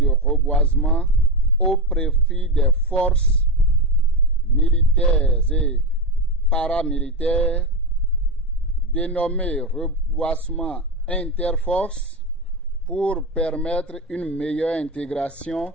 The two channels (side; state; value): both; normal; correlation 0.14